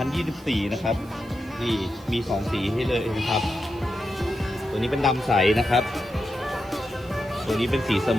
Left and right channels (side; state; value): right; noise; hiss, 27 dB below the sound